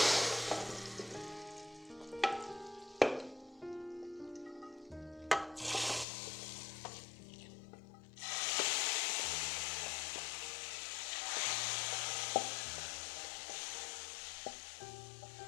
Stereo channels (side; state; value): right; drops out; at 6.1 s